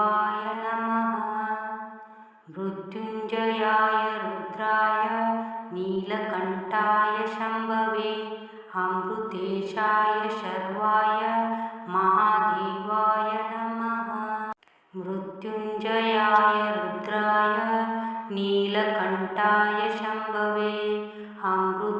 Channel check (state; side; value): identical; both; correlation 1.00